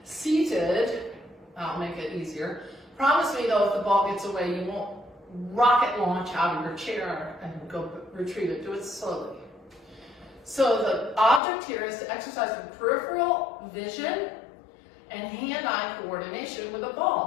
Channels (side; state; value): right; drops out; at 11.4 s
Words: Seated, I'll make it easier. Promise me though, if the ball gets away, you won't rocket launch out of your chair and go retrieve it. Do it slowly. So the object here is to exercise the peripheral vision and hand-eye coordination with a